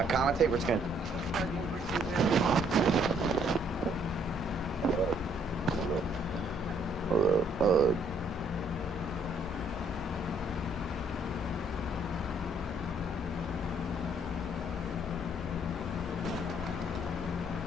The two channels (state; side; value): normal; both; correlation 0.66